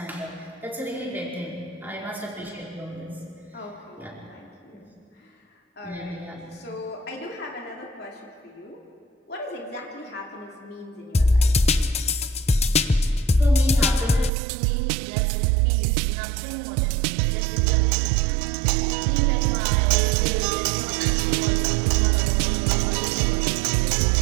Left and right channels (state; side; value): drops out; left; at 14.3 s